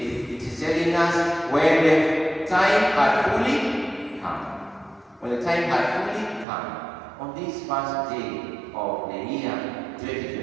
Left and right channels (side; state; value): left; drops out; at 6.5 s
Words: it is telling us when the time had fully come. When the time had fully come, on this first day of the year